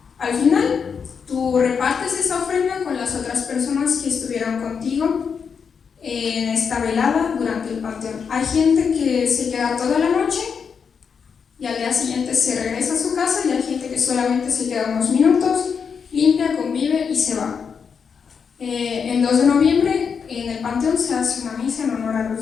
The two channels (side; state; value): right; quieter; 6.3 dB